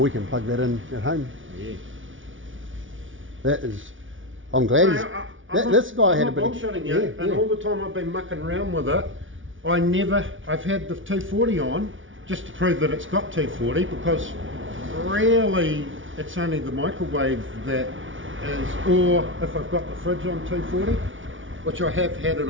can plug that in at home. Yeah. That is, I'm glad this guy had a bit of... And all the time I've been mucking around with it, I've had the 240 on just to prove that it's got 240, because really it's only the microwave that is, or if I've got the fridge on 240, which I have had it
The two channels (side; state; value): left; late; 0.57 ms